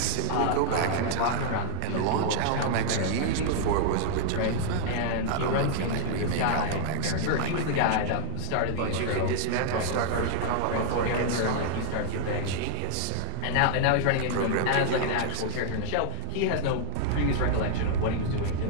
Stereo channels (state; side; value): different; both; correlation 0.00